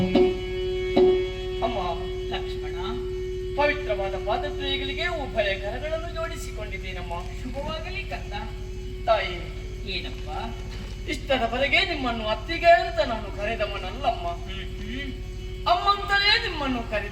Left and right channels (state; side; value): identical; both; correlation 1.00